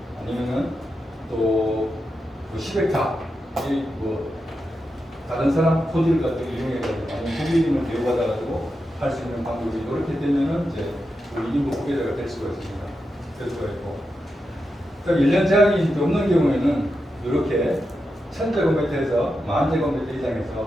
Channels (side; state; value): both; normal; correlation 0.88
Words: 아니면은 또 10헥타 뭐 다른 사람 토지를 가지고 이용해가지고 아니면 소비임을 대우받아가지고 할 수 있는 방법이 이렇게 되면은 이제 우리 임업 후계자가 될 수가 있습니다. 될 수가 있고. 그러니까 1년 제한이 없는 경우에는 이렇게 1000제곱미터에서 10,000제곱미터